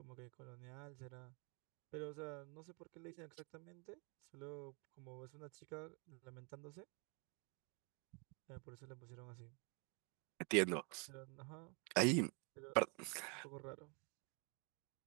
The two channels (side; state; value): left; quieter; 34.3 dB